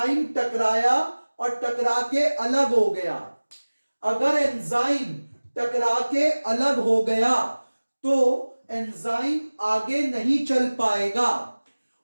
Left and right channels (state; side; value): inverted; both; correlation -1.00